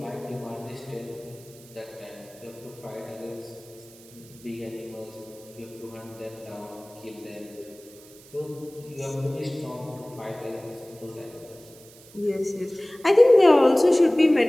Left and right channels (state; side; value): noise; right; hiss, 23 dB below the sound